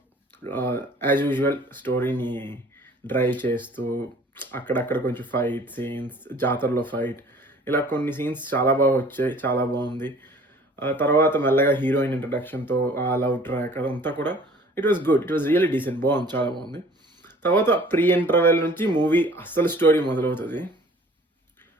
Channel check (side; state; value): both; normal; correlation 0.51